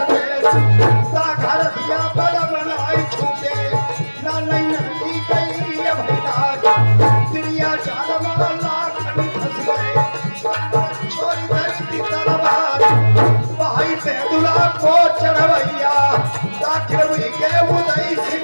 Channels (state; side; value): inverted; both; correlation -1.00